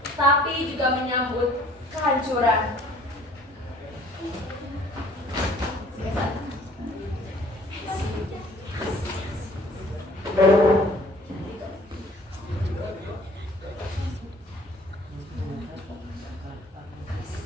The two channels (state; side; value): normal; both; correlation 0.54